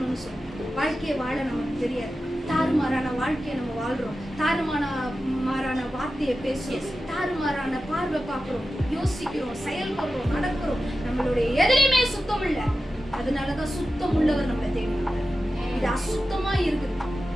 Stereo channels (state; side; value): normal; both; correlation 0.92